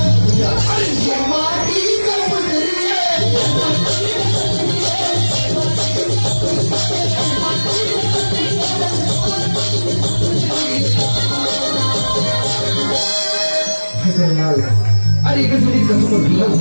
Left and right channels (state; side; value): inverted; both; correlation -1.00